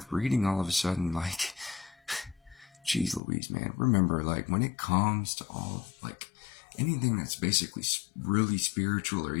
reading all of a sudden. Like, geez Louise, man. Remember, like, when it comes to all, like, anything that's basically really spiritual or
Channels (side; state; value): right; drops out; at 3.2 s